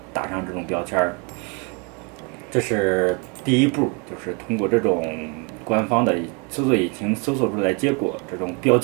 打上这种标签儿。这是第一步，就是通过这种官方的搜索引擎搜索出来结果这种标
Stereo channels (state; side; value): quieter; left; 32.1 dB